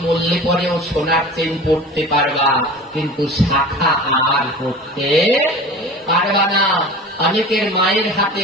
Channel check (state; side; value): normal; both; correlation 0.37